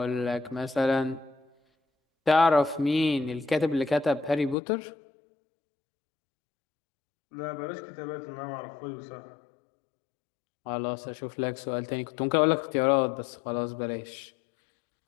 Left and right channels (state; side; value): drops out; right; at 4.5 s